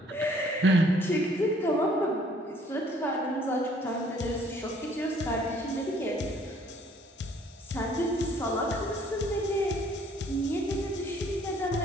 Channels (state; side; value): normal; both; correlation 0.60